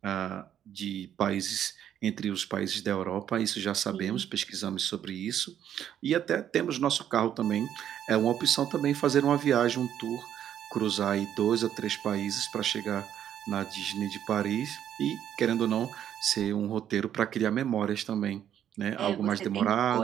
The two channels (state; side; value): quieter; left; 10.1 dB